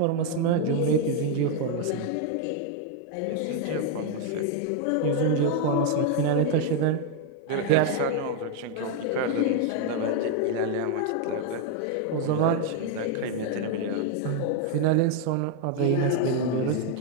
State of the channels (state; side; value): different; both; correlation 0.01